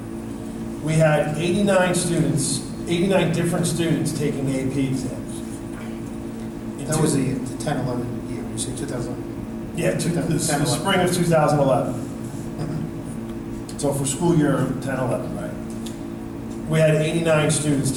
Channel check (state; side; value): identical; both; correlation 1.00